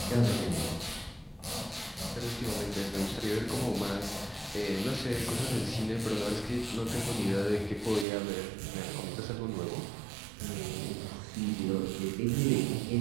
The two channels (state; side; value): drops out; left; at 8.1 s